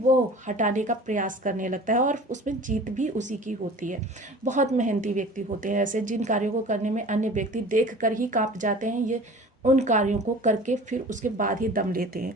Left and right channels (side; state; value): both; normal; correlation 0.42